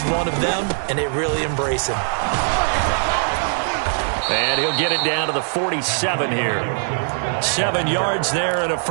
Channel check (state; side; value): silent; left; 61 dB below the other